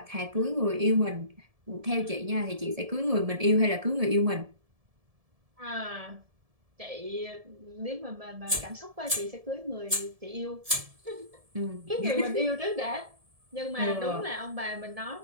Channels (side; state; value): left; late; 1.7 ms